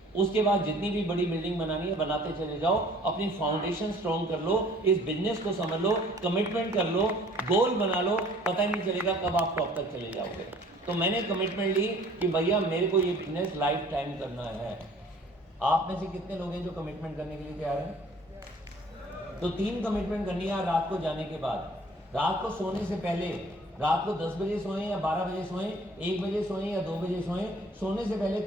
उसके बाद जितनी भी बड़ी बिल्डिंग बनानी है बनाते चले जाओ, अपनी फाउंडेशन स्ट्रांग कर लो, इस बिजनेस को समझ लो, कमिटमेंट कर लो, गोल बना लो, पता ही नहीं चलेगा कब आप टॉप तक चले जाओगे। तो मैंने कमिटमेंट ली कि भैया मेरे को ये बिजनेस लाइफ टाइम करना है। आप में से कितने लोग हैं जो कमिटमेंट करने के लिए तैयार हैं? तो 3 कमिटमेंट करनी है रात को जाने के बाद। रात को सोने से पहले, रात को 10 बजे सोएं या 12 बजे सोएं, 1 बजे सोएं या 2 बजे सोएं, सोने से पहले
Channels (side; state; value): both; normal; correlation 0.53